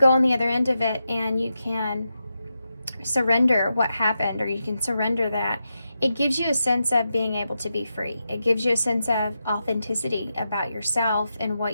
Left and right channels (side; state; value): both; inverted; correlation -0.88